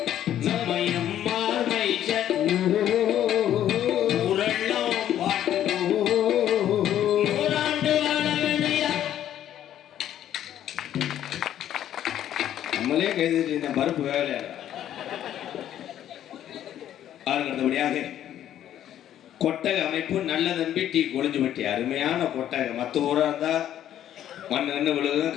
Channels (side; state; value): right; quieter; 11.2 dB